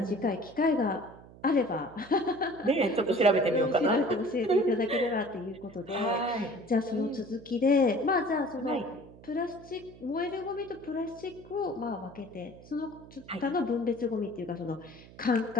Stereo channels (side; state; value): right; noise; hum, 20 dB below the sound